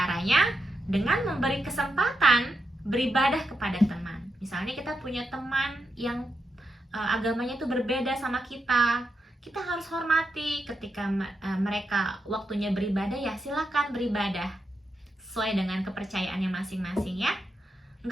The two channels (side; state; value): both; normal; correlation 0.85